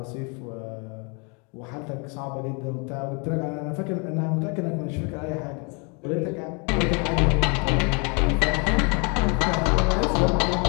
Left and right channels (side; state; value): right; quieter; 33.8 dB